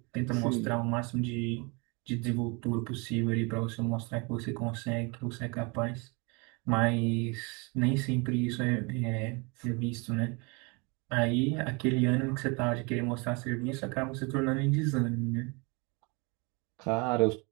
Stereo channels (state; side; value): quieter; left; 29.9 dB